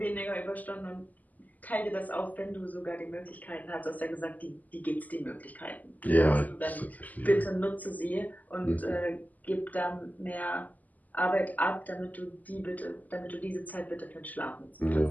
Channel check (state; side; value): late; right; 0.080 ms